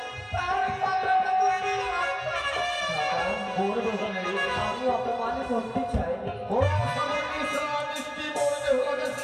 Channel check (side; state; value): both; identical; correlation 1.00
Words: তার কথাটা তুই আমি অপমান করতে চাইনি। ওরা আশা করে নিয়েছিলাম মিষ্টি বন বেহুলাকে